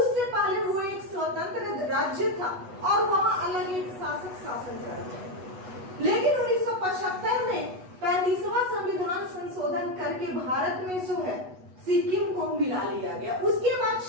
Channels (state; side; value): late; left; 8.1 ms